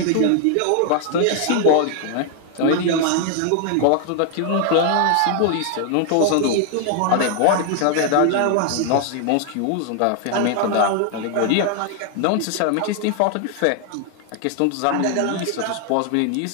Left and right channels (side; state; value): both; different; correlation 0.00